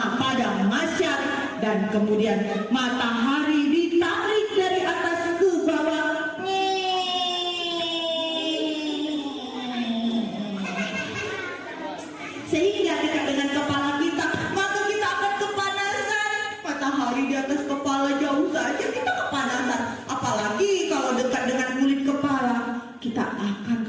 Padang Mahsyar, dan kemudian matahari ditarik dari atas ke bawah. Sehingga dekat dengan kepala kita, maka kita akan kepanasan. Matahari di atas kepala jauh saja kita kepanasan. Apalagi kalau dekat dengan kulit kepala, kita akan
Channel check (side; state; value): both; identical; correlation 1.00